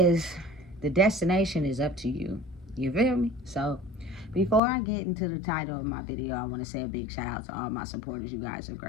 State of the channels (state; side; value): drops out; right; at 4.6 s